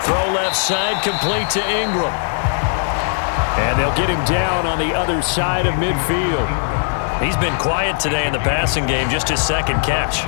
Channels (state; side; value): silent; right; digital silence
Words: Throw left side, complete to Ingram. And they'll get him down on the other side of midfield. He's been quiet today in the passing game, just his 2nd catch.